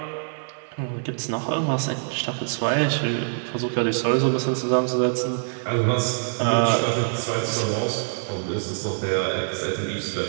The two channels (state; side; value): silent; left; 62 dB below the other